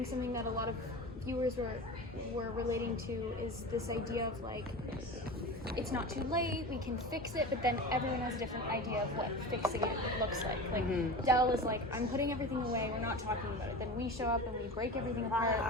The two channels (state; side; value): normal; both; correlation 0.31